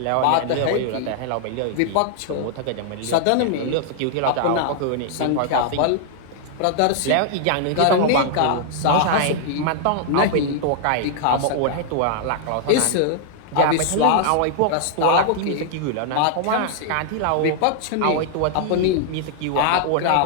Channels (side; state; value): both; different; correlation -0.01